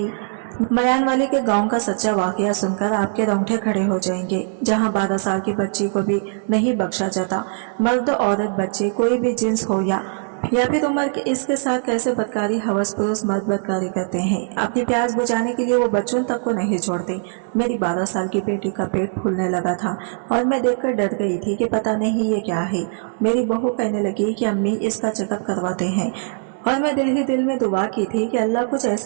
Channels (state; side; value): silent; left; digital silence